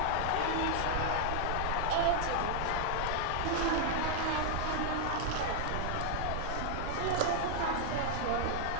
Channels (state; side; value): different; both; correlation -0.01